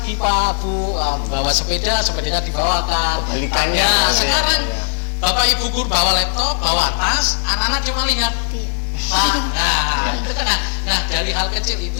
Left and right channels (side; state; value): right; silent; 67 dB below the other